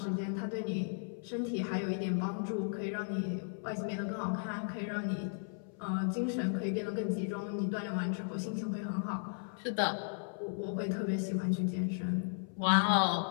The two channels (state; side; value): silent; right; 54 dB below the other